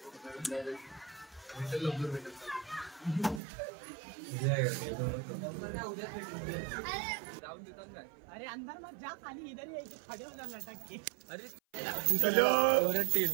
अरे अंदर मत जा, खाली इधर ही खड़े हो जाना लटक के. अरे चलो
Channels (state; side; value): drops out; left; at 3.4 s